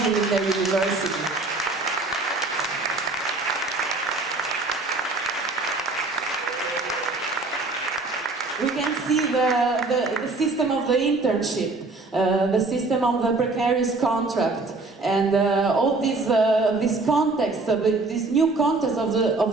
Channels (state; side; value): quieter; left; 3.4 dB